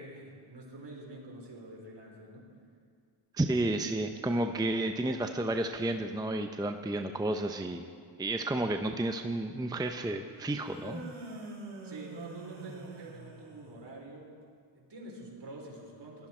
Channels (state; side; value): normal; both; correlation 0.67